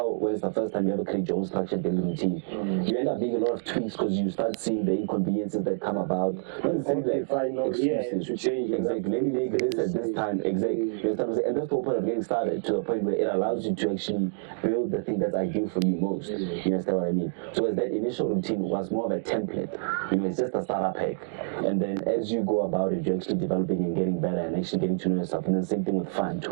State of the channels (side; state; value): left; silent; digital silence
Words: when it's the first time you ever create your own structured daily routine, you end up being a lot of tweaks because you start seeing the inconveniences that come about. Not necessarily like excuses to change it. exactly. Maybe make this at this time. Exactly. You understand what I'm saying? And that's the whole point of getting started to the point where it allows you to actually build the thing that's ideal for you most. You understand what I mean? So as that initial routine was more of a template, it's just a startup hack. And then as you go about it, you're actually developing and getting better and actually getting to know yourself. And then same thing with fun,